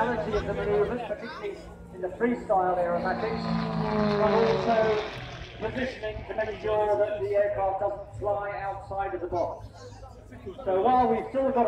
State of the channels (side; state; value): both; identical; correlation 1.00